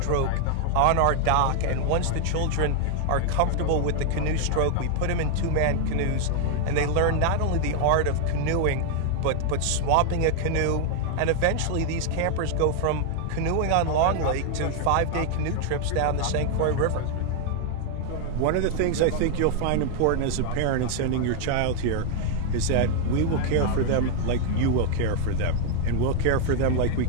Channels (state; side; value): different; both; correlation 0.00